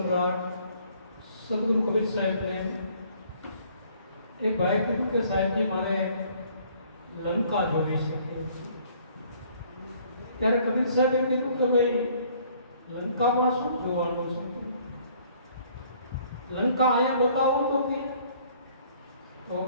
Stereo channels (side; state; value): both; inverted; correlation -0.59